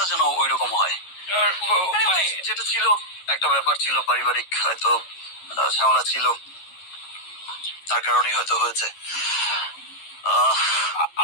যেন ওই রকম হয়। মানে যেটা ছিল একটা ব্যাপার ছিল, পারিবারিক হয়তো ঝামেলা ছিল, তার কারণেই হয়তো হয়েছে।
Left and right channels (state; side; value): late; right; 11 ms